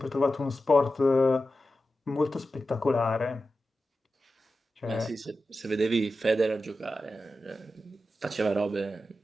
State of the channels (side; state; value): both; normal; correlation 0.91